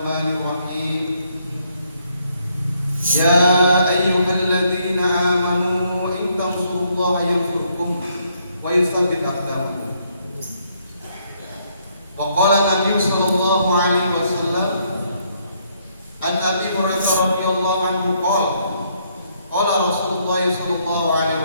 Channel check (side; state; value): both; inverted; correlation -0.71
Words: الرحيم يا أيها الذين آمنوا إن تنصروا الله ينصركم ويثبت أقدامكم وقال النبي صلى الله عليه وسلم عن أبي هريرة رضي الله عنه قال قال رسول الله صلى الله عليه